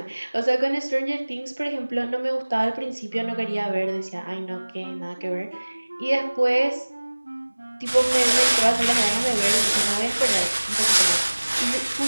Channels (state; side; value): inverted; both; correlation -1.00